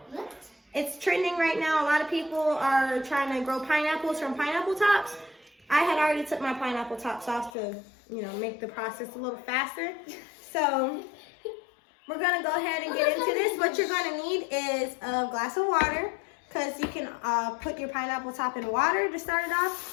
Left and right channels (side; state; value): right; drops out; at 7.6 s